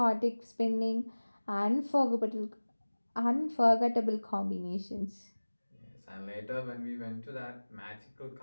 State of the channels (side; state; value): both; inverted; correlation -1.00